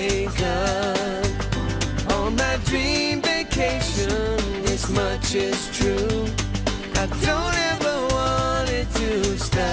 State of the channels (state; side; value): identical; both; correlation 1.00